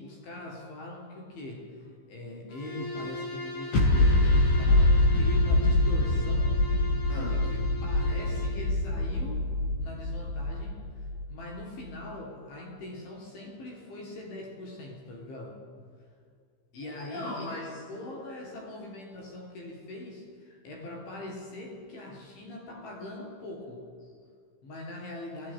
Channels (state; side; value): late; right; 15 ms